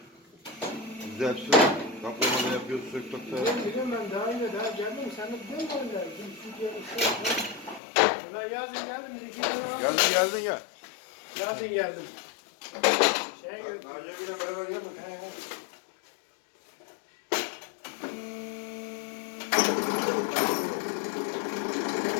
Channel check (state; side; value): drops out; right; at 7.8 s